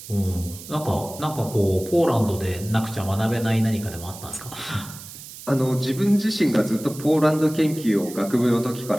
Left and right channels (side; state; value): right; noise; hiss, 15 dB below the sound